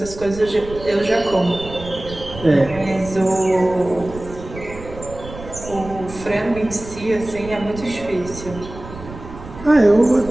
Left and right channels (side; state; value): right; noise; rumble, 14 dB below the sound